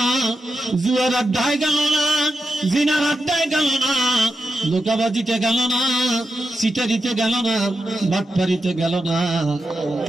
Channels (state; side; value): normal; both; correlation 0.88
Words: জুয়ার আড্ডায় গেল না, জিনার আড্ডায় গেল না, ধোঁকাবাজিতে গেল না, সিটারিতে গেল না, বাটপারিতে গেল না,